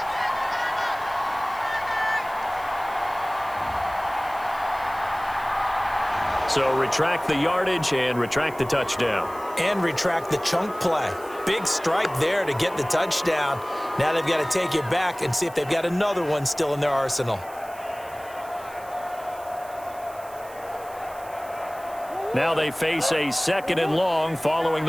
So retract the yardage and retract the touchdown. And retract the chunk play. Big strike there to get the touchdown. Now they've got to take it back and see if they've got another one still in their arsenal. Now they face a second and long following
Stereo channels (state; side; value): noise; right; hiss, 21 dB below the sound